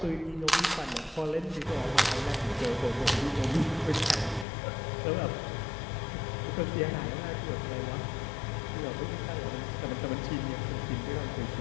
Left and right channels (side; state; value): right; drops out; at 4.5 s